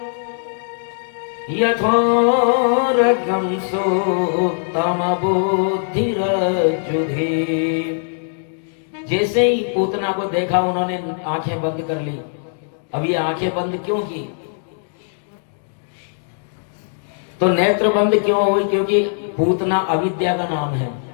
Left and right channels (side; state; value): right; silent; digital silence